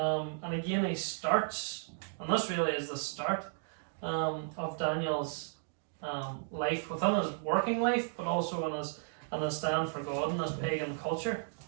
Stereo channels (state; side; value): silent; left; digital silence